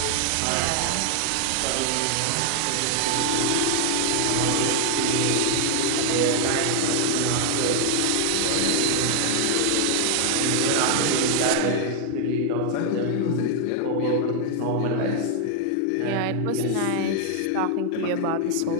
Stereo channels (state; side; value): different; both; correlation 0.00